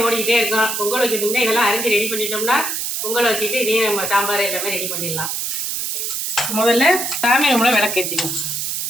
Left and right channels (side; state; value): right; noise; hiss, 2 dB below the sound